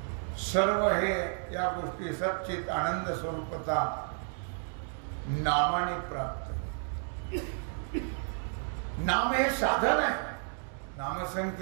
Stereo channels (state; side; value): silent; left; 56 dB below the other